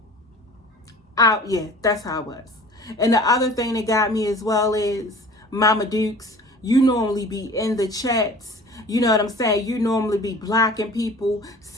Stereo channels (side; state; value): both; normal; correlation 0.44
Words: Yeah, that's how it was. And the other thing that got me as well is, Mama Dukes, you normally be in the chats. You know what I'm saying? You normally be blocking people,